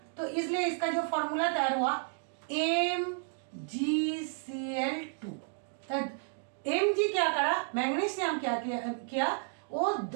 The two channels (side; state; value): left; silent; 56 dB below the other